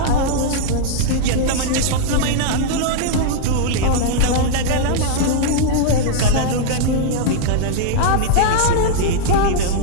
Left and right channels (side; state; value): both; different; correlation -0.01